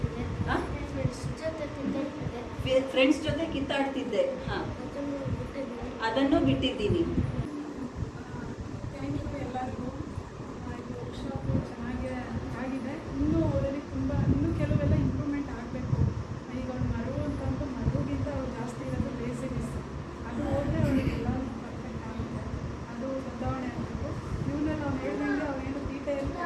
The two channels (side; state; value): both; identical; correlation 1.00